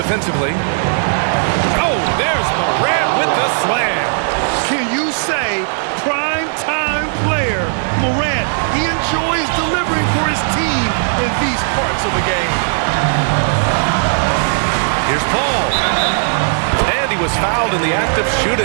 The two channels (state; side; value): silent; left; digital silence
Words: Oh, there's Morant with the slam. Can you say prime time player Morant? He enjoys delivering for his team in these parts of the game. Here's Paul. And he was fouled in the act of